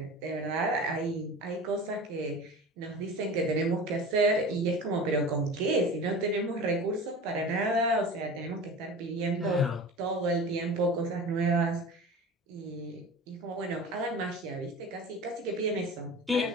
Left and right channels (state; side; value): normal; both; correlation 0.35